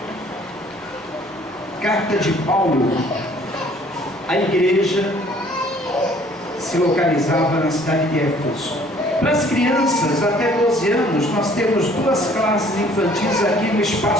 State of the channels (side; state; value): both; normal; correlation 0.57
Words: carta de Paulo, a igreja se localizava na cidade de Éfeso. Para as crianças até 12 anos, nós temos 2 classes infantis aqui no